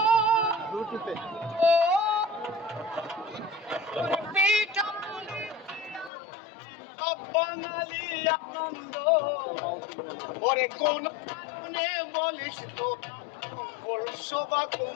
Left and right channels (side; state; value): right; drops out; at 6.1 s